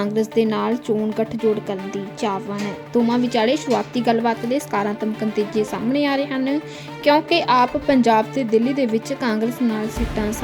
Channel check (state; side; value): identical; both; correlation 1.00